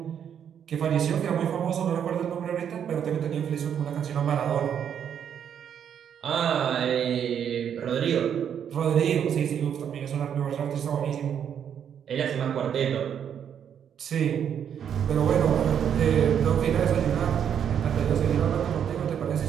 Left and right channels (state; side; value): quieter; left; 8.6 dB